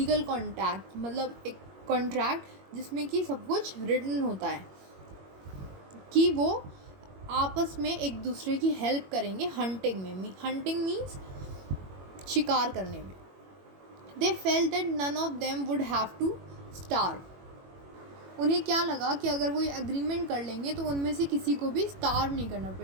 कॉन्ट्रैक्ट, मतलब एक कॉन्ट्रैक्ट जिसमें कि सब कुछ रिटन होता है कि वो आपस में एक दूसरे की हेल्प करेंगे हंटिंग में. हंटिंग मीन्स शिकार करने में. They felt that none of them would have to starve. उन्हें क्या लगा कि अगर वो ये एग्रीमेंट कर लेंगे तो उनमें से किसी को भी स्टार्व नहीं करना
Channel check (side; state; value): left; late; 21 ms